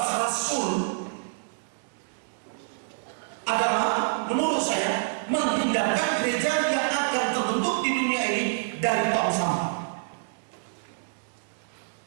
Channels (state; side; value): silent; left; digital silence